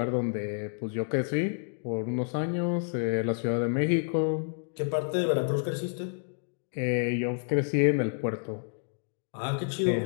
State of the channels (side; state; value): right; silent; digital silence